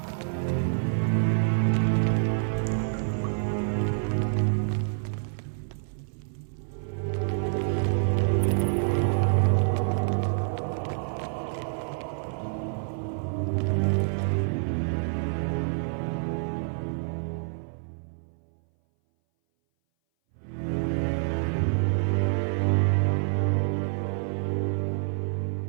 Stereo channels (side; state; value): left; silent; 59 dB below the other